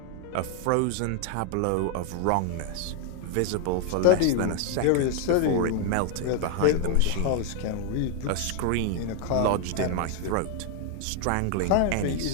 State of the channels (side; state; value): both; different; correlation 0.01